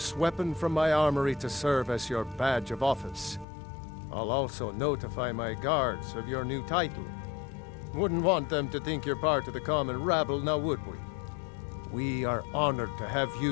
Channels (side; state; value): right; drops out; at 3.5 s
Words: weapon from my armory to serve as your badge of office. I'll also notify my guards of your new title. Wouldn't want them to think you're part of the common rabble, now would we? We are honored to have